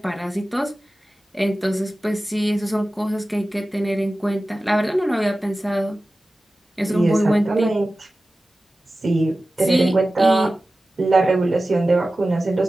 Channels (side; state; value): both; normal; correlation 0.95